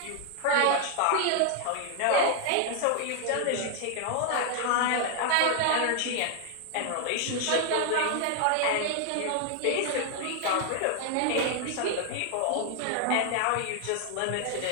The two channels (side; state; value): both; different; correlation 0.00